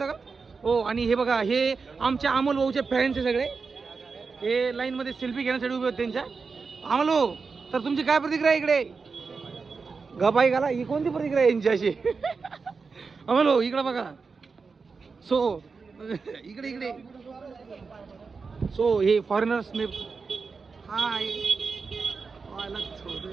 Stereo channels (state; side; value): quieter; left; 4.8 dB